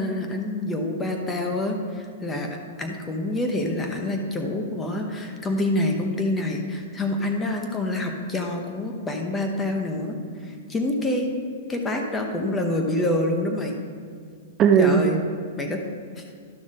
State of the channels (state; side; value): normal; both; correlation 0.17